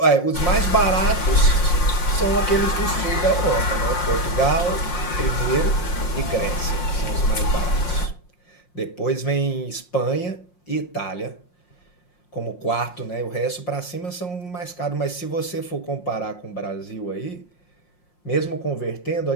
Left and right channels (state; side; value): late; right; 5.6 ms